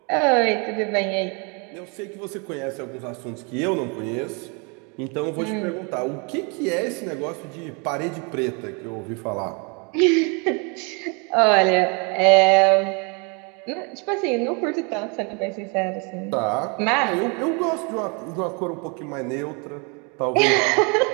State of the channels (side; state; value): left; quieter; 33.2 dB